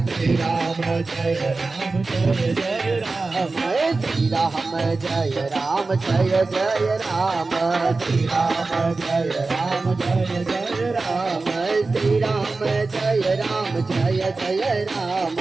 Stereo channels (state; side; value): quieter; left; 3.7 dB